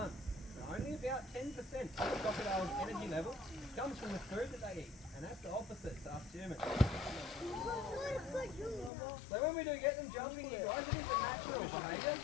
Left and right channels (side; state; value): right; drops out; at 8.9 s